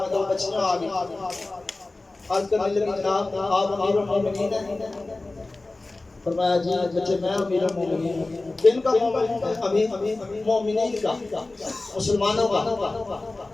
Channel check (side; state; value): right; quieter; 3.1 dB